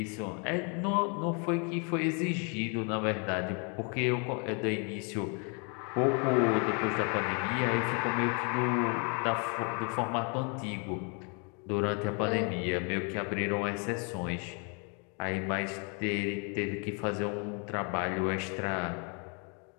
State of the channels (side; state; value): right; quieter; 36.4 dB